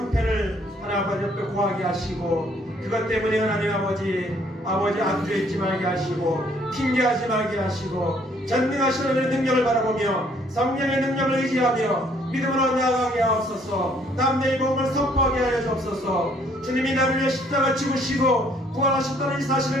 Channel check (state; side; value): normal; both; correlation 0.63